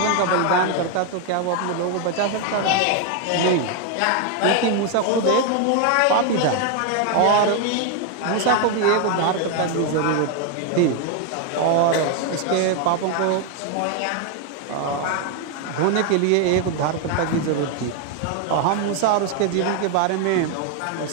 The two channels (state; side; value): different; both; correlation 0.01